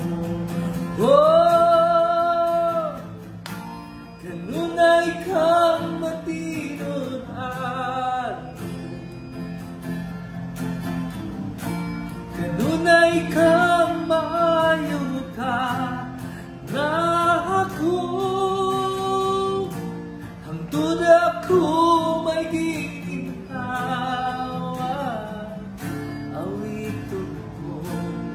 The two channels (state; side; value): identical; both; correlation 1.00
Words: Oh, kanunay kang matinud-an, kanunay kang maayo ka na ako, hangtod ako may giginawa, awiton ko